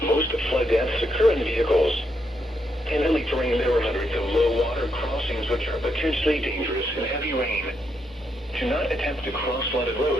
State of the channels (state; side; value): normal; both; correlation 0.79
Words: Most flood deaths occur in vehicles. In hilly terrain, there are hundreds of low-water crossings which are potentially dangerous in heavy rain. Do not attempt to cross flooded